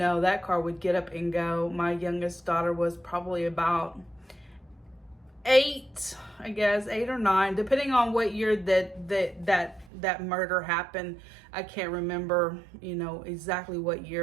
that car would get up and go. My youngest daughter was probably about 8, I guess, 8 or 9, depending on what year that murder happened. I can't remember, you know, exactly what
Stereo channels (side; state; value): left; drops out; at 9.9 s